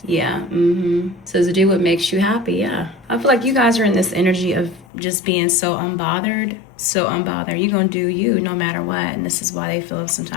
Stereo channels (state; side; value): drops out; right; at 4.9 s